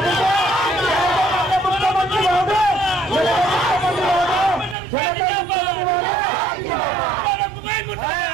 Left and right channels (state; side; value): drops out; left; at 4.8 s